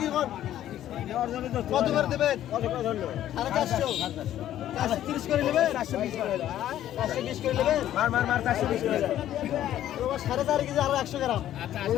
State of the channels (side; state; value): right; quieter; 12.1 dB